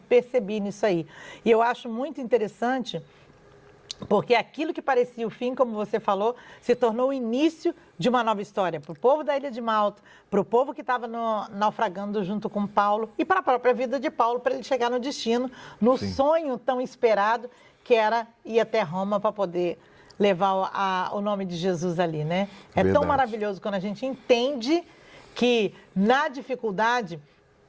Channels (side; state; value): both; identical; correlation 1.00